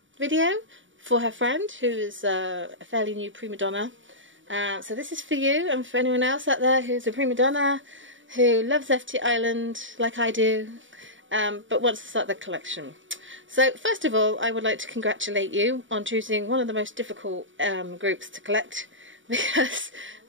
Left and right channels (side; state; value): left; late; 0.56 ms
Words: video for her friend, who is a fairly new prima donna. So this is for you and for anyone else out there who's a prima donna, who loves FTISLAND like I do, but wants to start their collection. So first of all, I would like to congratulate you on choosing one of the most difficult groups to collect, because